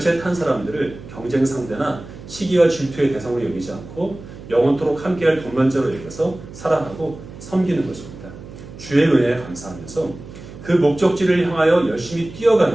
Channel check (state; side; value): noise; right; hum, 15 dB below the sound